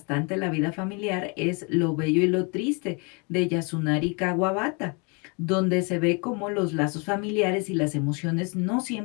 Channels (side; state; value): right; quieter; 31.7 dB